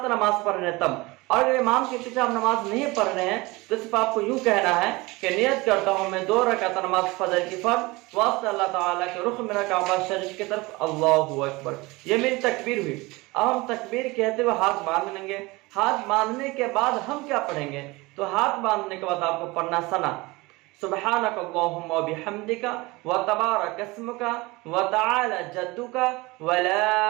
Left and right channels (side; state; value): left; quieter; 22.8 dB